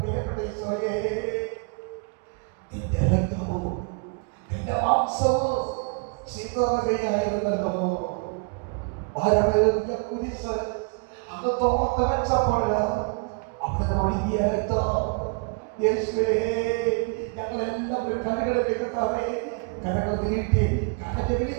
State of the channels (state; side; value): quieter; left; 34.3 dB